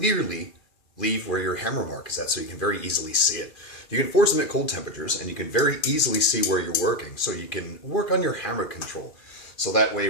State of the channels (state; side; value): late; right; 2.4 ms